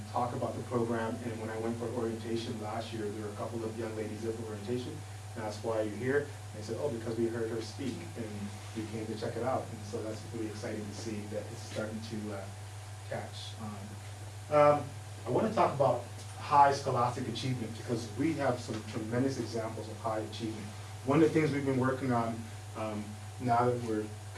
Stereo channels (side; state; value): both; identical; correlation 1.00